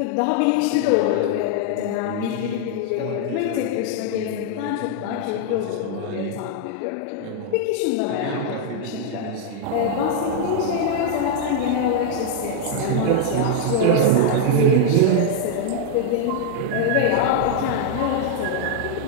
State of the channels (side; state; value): both; different; correlation -0.01